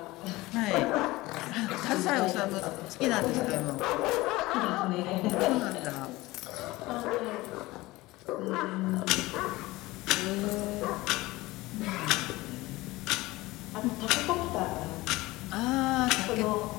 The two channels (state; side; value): quieter; right; 19.7 dB